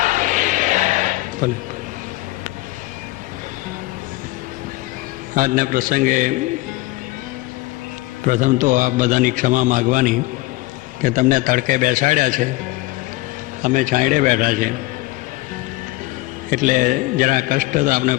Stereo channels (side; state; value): right; quieter; 20.1 dB